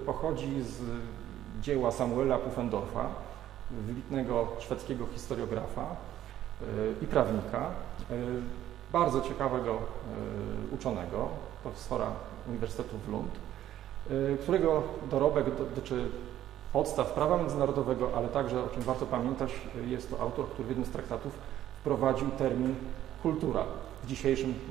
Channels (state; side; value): quieter; left; 12.2 dB